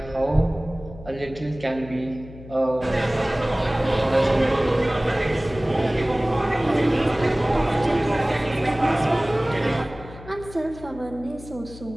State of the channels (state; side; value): noise; left; hum, 16 dB below the sound